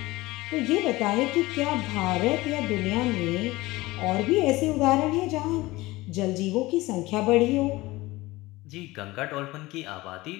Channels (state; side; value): quieter; right; 19.9 dB